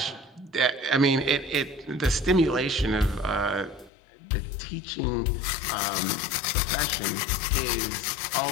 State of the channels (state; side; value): drops out; right; at 3.9 s